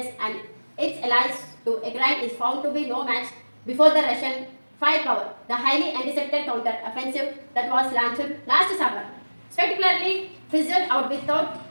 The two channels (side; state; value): both; inverted; correlation -1.00